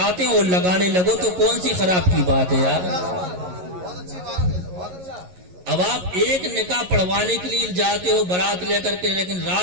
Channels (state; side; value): late; left; 11 ms